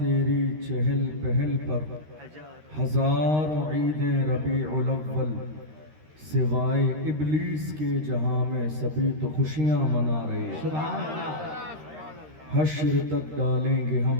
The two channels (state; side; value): late; left; 13 ms